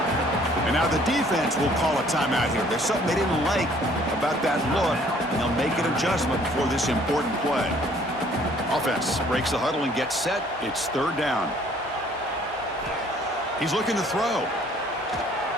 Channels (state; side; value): normal; both; correlation 0.58